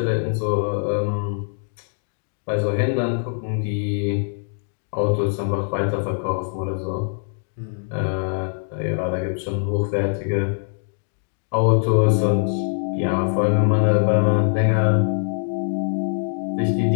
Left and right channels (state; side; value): silent; right; 64 dB below the other